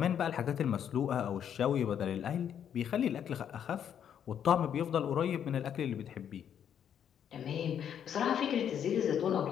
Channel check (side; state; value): right; quieter; 9.0 dB